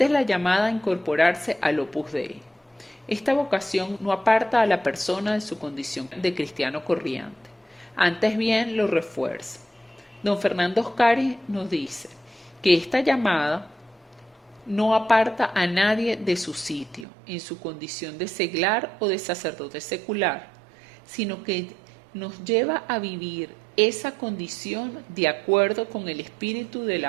es la llamada a incorporarse al Opus Dei. Esta vocación no aparta a la persona de su condición de cristiano corriente. Antes bien lo refuerza. Don Fernando Oscari nos dice que esta llamada no aparta a nadie de su sitio, en su condición de seglar o de sacerdote secular, sino que nos lleva a vivir esa condición de acuerdo con el espíritu de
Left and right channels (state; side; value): drops out; left; at 17.1 s